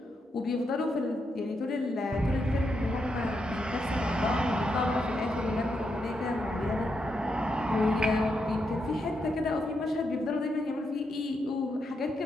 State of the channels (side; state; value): both; normal; correlation 0.82